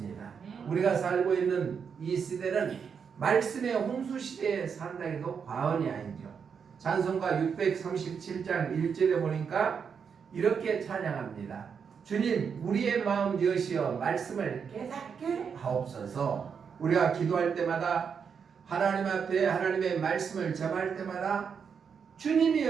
우리가 살고 있는 이 시대는 말씀의 홍수 시대에 산다 해도 과언이 아니죠. 찬송가 637장 1절에 보니까 이렇게 찬양합니다. 주님 우리의 마음 여시어 말씀을 깨닫게 하옵소서. 우리가 기도할 때마다 하나님 앞에 하나님의 말씀을 접할 때마다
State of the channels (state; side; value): quieter; left; 6.6 dB